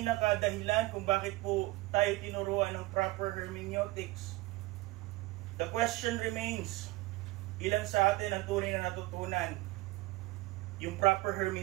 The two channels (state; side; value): quieter; left; 20.5 dB